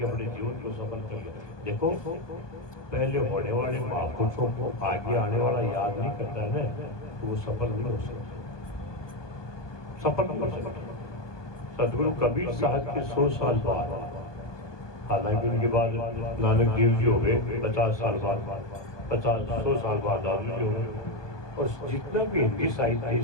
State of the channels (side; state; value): right; late; 1.2 ms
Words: अपने जीवन को सफल कर लिया। देखो पहले होने वाले महापुरुषों को आगे आने वाला याद नहीं करता है ना, तो वो सफल नहीं हो सकता, सफल नहीं हो सकता। सदगुरु कबीर साहब के 100 साल बाद, हालांकि उनके बाद नानक देव जी हो गए 50 साल बाद, 100 साल बाद दादू जी हो गए। और जितना भी हिंदी साहित्य